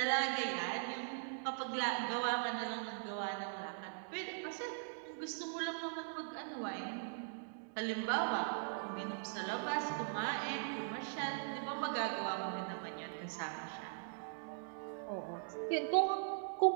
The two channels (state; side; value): silent; left; digital silence